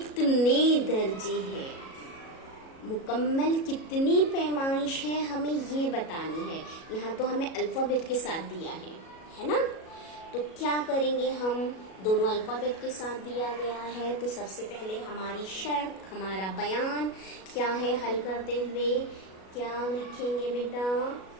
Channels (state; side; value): late; right; 37 ms